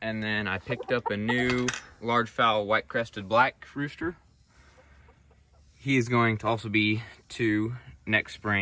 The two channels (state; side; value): identical; both; correlation 1.00